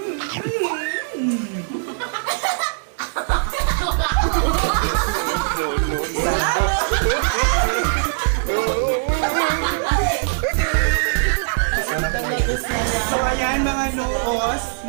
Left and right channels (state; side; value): silent; left; digital silence